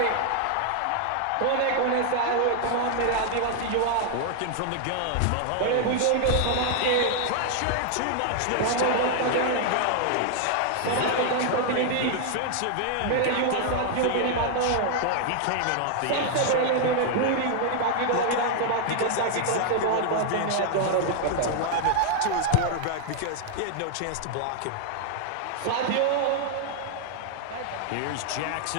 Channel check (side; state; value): both; different; correlation 0.00